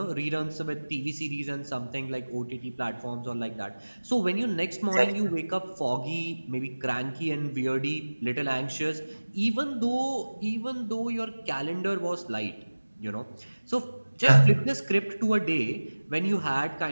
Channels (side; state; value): both; inverted; correlation -1.00